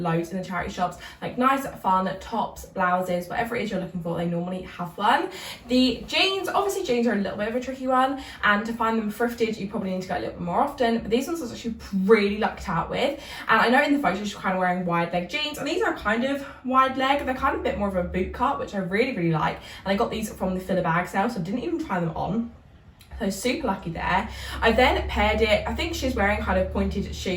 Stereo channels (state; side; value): identical; both; correlation 1.00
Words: in the charity shops, like nice fun tops, blouses, whatever it is you're looking for, they normally have one. The jeans, obviously jeans are a little bit of a tricky one, and to find them thrifted you probably need to go a little bit more often, but these ones I was actually really lucked out with. And I know in the photos you're kind of wearing wide leg jeans, and these are kind of wide leg, they're kind of a bit more of a boot cut, which I really like, and I got these from the filler bag sale, so I didn't even try them on. So super lucky there. I then paired it, I think she's wearing kind of pointed